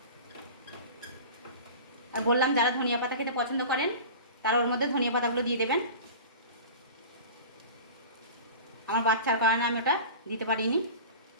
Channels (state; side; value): inverted; both; correlation -0.35